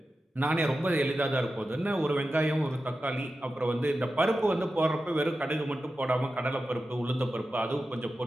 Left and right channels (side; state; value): both; normal; correlation 0.92